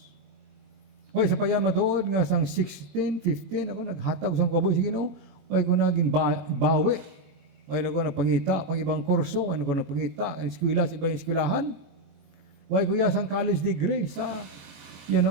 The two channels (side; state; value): left; late; 21 ms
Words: Way, sa payan matuod nga sang 16, 15, ako naghatag sa kabuhi sa Ginoo, way ko naging bawi. Way na ko nagpangita, pang ibang kurso, way na ko nagpangita, ang eskwela sa ibang eskwelahan. Way ko sang college degree sa